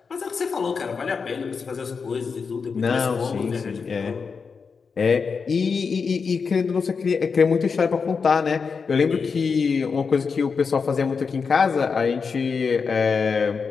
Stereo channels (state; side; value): quieter; right; 5.4 dB